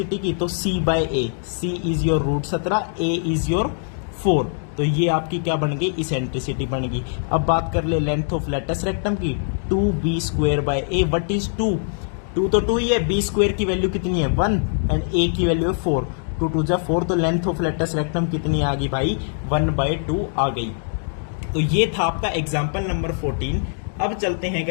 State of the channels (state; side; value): silent; right; digital silence